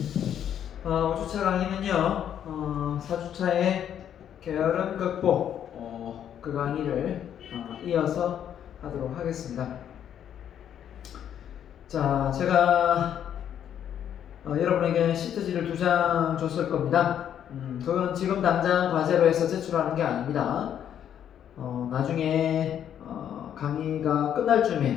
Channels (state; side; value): quieter; right; 9.6 dB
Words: 5주차 강의는요, 4주차의 게으름 극복 그 강의를 이어서 하도록 하겠습니다. 자, 제가 여러분에게 시트지를 2장 줬을 겁니다. 그건 지금 당장 과제로 해서 제출하는 게 아닙니다. 나중에 강의가 끝날